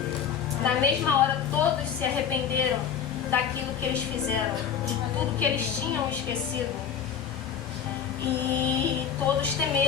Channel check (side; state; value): right; quieter; 7.9 dB